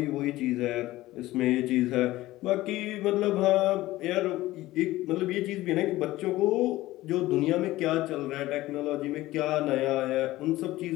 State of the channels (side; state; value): right; quieter; 17.0 dB